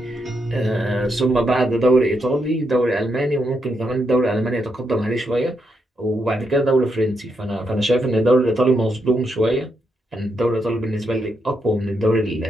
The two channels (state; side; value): normal; both; correlation 0.81